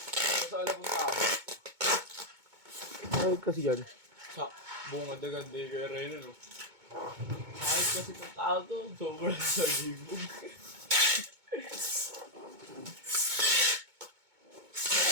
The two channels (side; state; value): left; late; 2.2 ms